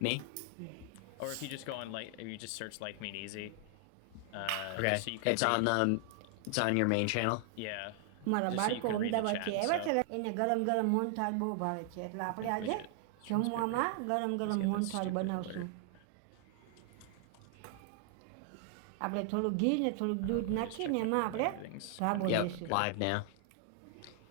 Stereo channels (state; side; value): different; both; correlation 0.00